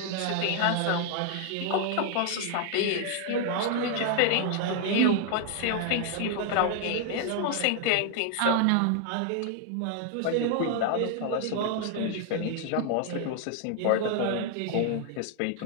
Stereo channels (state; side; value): different; both; correlation 0.00